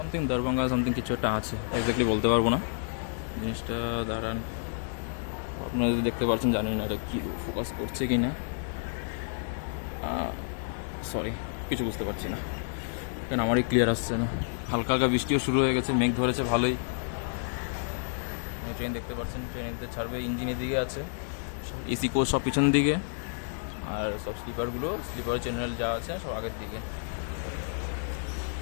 দরভঙ্গা সামথিং কিছু একটা আছে, এক্স্যাক্টলি বলতে পারবো না জিনিসটা। দাঁড়ান, আপনারা যদি দেখতে পাচ্ছেন, জানি না এটা কি ফোকাস করছে কি না, সরি, কিছু বুঝতে পারছি না, কেন আমারই ক্লিয়ার আসছে না। হালকা হালকা বৃষ্টিও শুরু হয়ে গেছে, মেঘ ধরেছে ভালোই। ট্রেন দেখতে পাচ্ছেন, ট্রেন এদিকে ছাড়বে, ইঞ্জিন এদিকে আছে, এসি কোচ সব পিছন দিকে, আর সব স্লিপার চ্যানেল যা আছে সব আগের দিকে।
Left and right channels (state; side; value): silent; right; digital silence